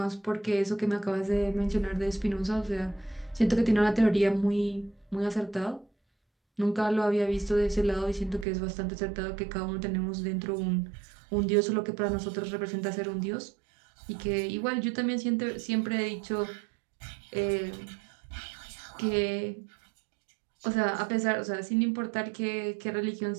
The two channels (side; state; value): left; drops out; at 8.5 s